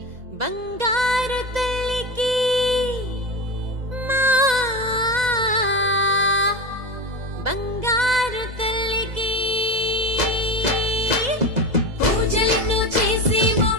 బంగారు తల్లికి, మా బంగారు తల్లికి. పూజలను చేసేమో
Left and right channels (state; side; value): late; left; 2.0 ms